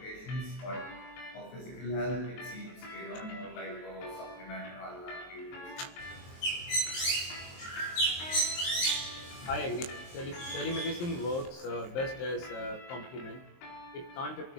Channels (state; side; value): late; right; 23 ms